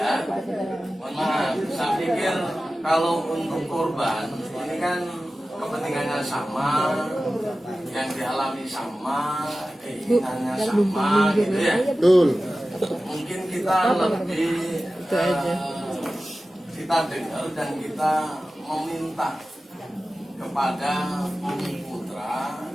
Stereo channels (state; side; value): normal; both; correlation 0.95